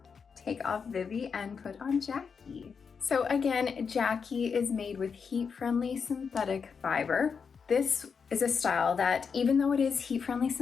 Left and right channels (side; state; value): right; quieter; 6.0 dB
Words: Take off Vivie and put on Jacky. So again, Jacky is made with heat-friendly synthetic fiber. This is a style that, even though it is heat-friendly